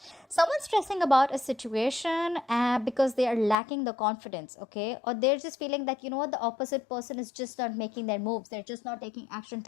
Someone's stressing about a situation because they are lacking the confidence, okay? Or they're just feeling that, you know what, the opposite person is just not making their moves. They're just not taking action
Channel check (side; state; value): right; drops out; at 3.6 s